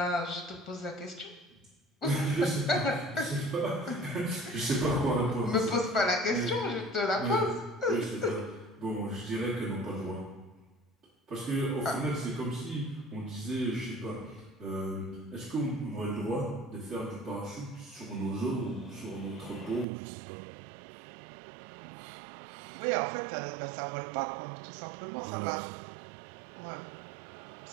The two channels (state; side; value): drops out; left; at 19.9 s